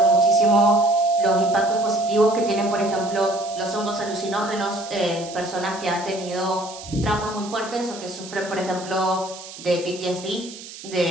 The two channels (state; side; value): noise; right; hiss, 15 dB below the sound